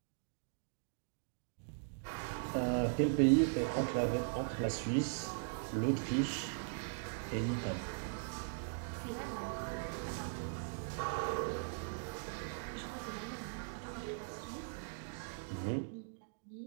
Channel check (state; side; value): silent; left; digital silence